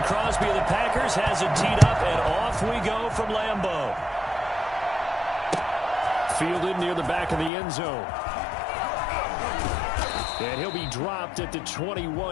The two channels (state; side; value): drops out; right; at 7.5 s